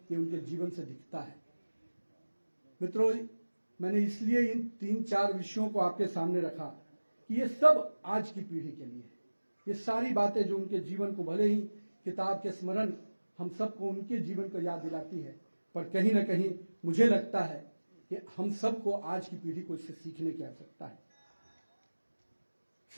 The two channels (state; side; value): inverted; both; correlation -1.00